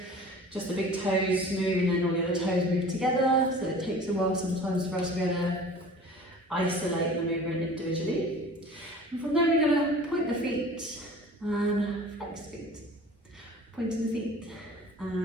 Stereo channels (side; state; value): both; normal; correlation 0.43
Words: just the big toes move and then all the other toes move together. So it takes a while sometimes for us to be able to isolate the movement individually. And from there we're going to point the feet and flex the feet. Pointing the feet